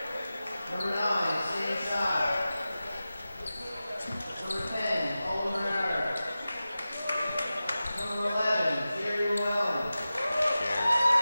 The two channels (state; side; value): inverted; both; correlation -0.94